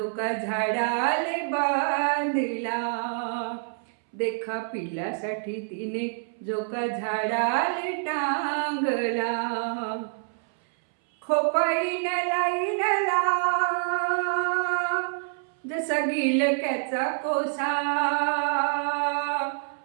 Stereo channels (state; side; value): silent; left; 60 dB below the other